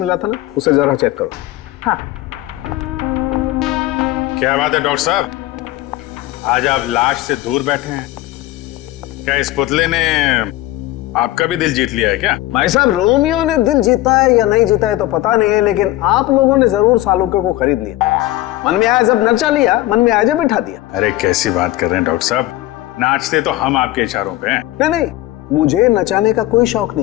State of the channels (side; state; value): right; quieter; 16.6 dB